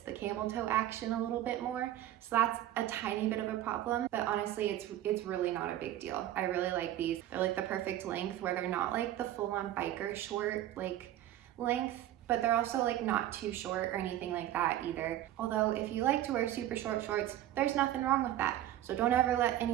the camel toe action a little bit more. So that's a tiny bit of a problem. But honestly, it's really not a big deal. I really like these. They're like the perfect length where they're not like the full-on biker short like length, but they're also like not too short or anything like that either. Although if you like to wear super short shorts, there's nothing wrong with that. So don't ever let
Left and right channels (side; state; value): left; quieter; 13.1 dB